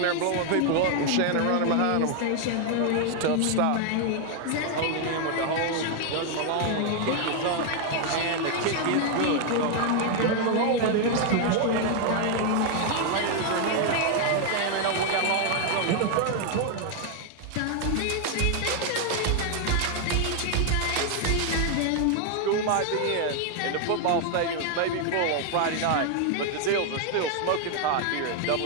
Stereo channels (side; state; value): both; different; correlation 0.00